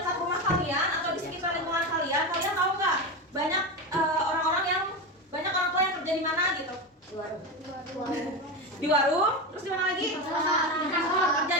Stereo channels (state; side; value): normal; both; correlation 0.18